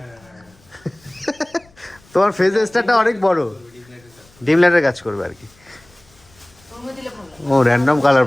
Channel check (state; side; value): noise; left; rumble, 30 dB below the sound